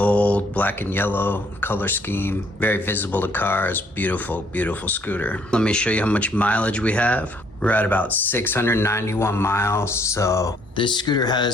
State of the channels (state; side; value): normal; both; correlation 0.65